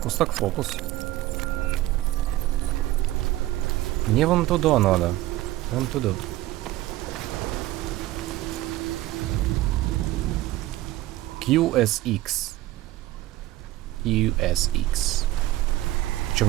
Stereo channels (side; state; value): left; quieter; 16.0 dB